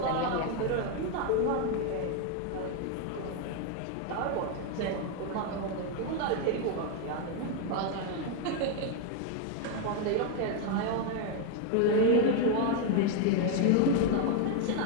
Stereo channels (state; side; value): different; both; correlation 0.01